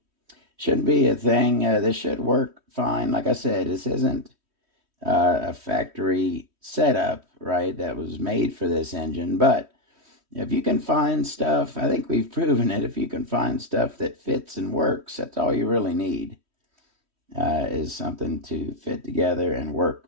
Shouldn't be a thing. This should work fine. Like I said, this isn't a factory setup, right, that was made for this engine. But if you can find stuff, I think we've proven it, if you can find stuff that fits and works, that's all you really need, is something to fit together and work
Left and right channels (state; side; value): late; left; 3.1 ms